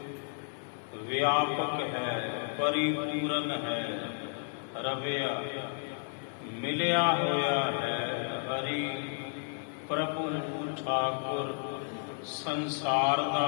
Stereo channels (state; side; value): silent; right; 56 dB below the other